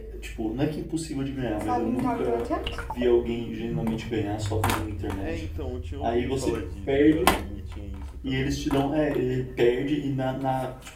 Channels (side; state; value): both; identical; correlation 1.00